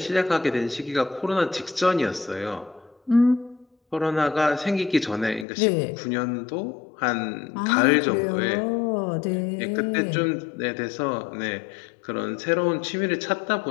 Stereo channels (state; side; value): drops out; right; at 5.5 s